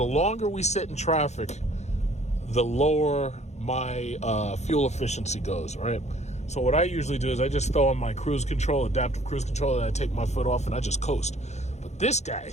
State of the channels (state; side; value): late; right; 0.33 ms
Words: longer we sit in traffic, the lower my fuel efficiency goes, right? So what I usually do is I just throw on my cruise control, adaptive cruise control, and I take my foot off and I just coast. But this guy,